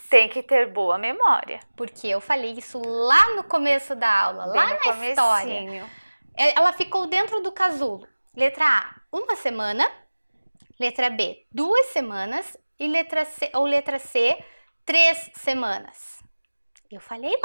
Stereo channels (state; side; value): inverted; both; correlation -1.00